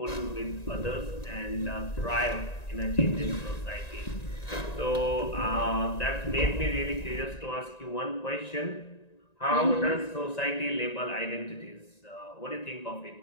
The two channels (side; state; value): right; late; 1.9 ms